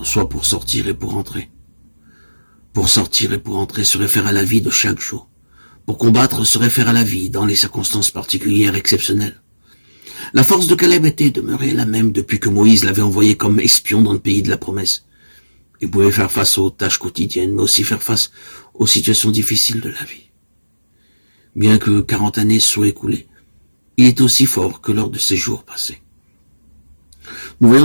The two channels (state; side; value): inverted; both; correlation -1.00